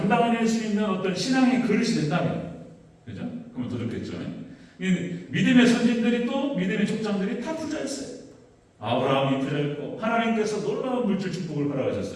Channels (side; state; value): both; identical; correlation 1.00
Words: 수 있는 어떤 신앙의 그릇이 된다면, 그죠? 그러면 더 좋겠죠. 믿음의 선진들이 또 믿음의 족장들이 다 부자였어요. 아브라함이 부자였고 하나님께서 놀라운 물질 축복을